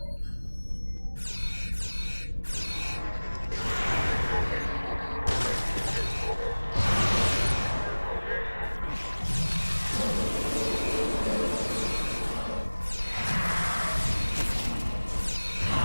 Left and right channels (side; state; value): both; inverted; correlation -1.00